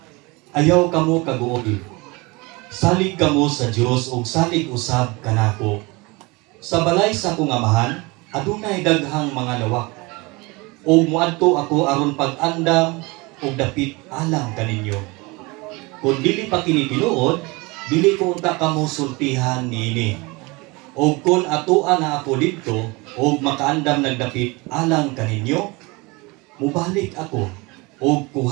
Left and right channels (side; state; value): left; quieter; 25.3 dB